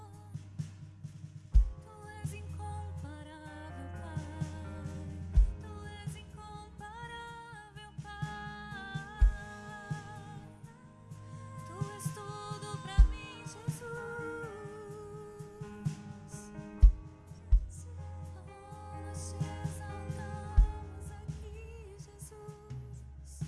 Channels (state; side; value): identical; both; correlation 1.00